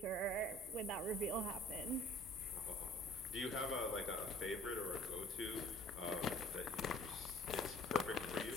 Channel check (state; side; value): normal; both; correlation 0.52